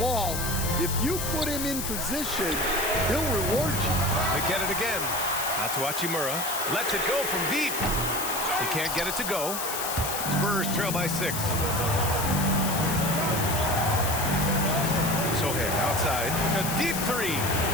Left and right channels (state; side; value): noise; left; hiss, 4 dB below the sound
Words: if you put him in position, he'll reward you. They get it again. Out to Hachimura. Lets it go from deep. He can't get it to go. Spurs trail by 6. Sohan outside. A deep 3.